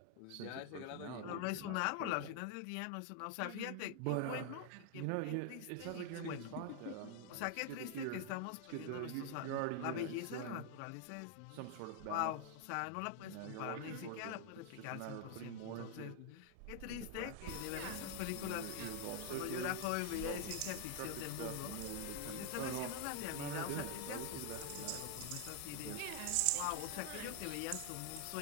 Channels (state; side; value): different; both; correlation 0.00